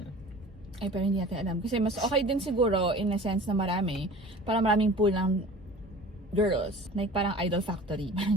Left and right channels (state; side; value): normal; both; correlation 0.41